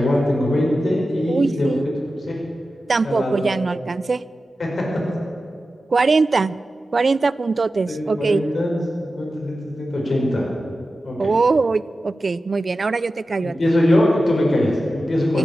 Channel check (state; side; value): normal; both; correlation 0.93